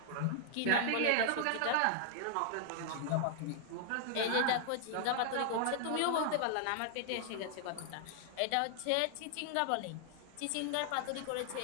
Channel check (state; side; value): different; both; correlation 0.00